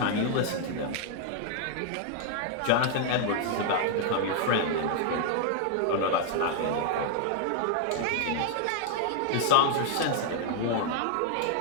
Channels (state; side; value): different; both; correlation 0.00